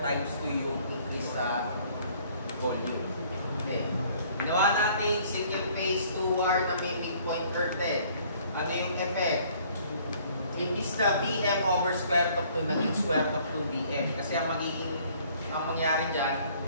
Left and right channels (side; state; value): both; inverted; correlation -0.59